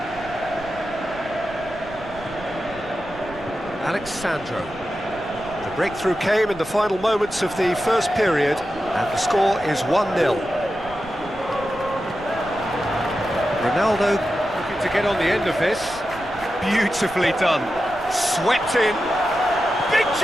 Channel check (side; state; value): right; noise; rumble, 20 dB below the sound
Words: Alexandro. The breakthrough came in the final moments of the first period, and the score is 1-0. Ronaldo looking to get on the end of this. Beautifully done. Swept in. Big